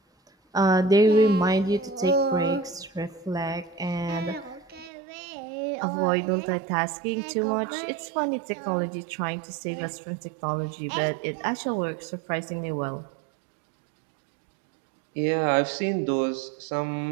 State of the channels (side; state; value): left; drops out; at 4.9 s